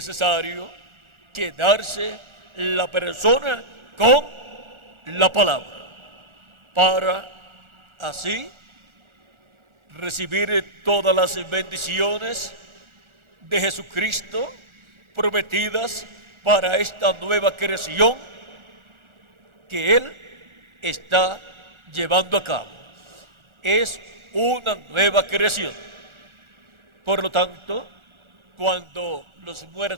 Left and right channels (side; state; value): left; late; 1.4 ms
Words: quedarse la persona con la palabra para así recibir todas las bendiciones de Jesucristo prometidas para esta nueva creación que Él está llevando a cabo. Es una nueva creación. Por lo tanto, cuando los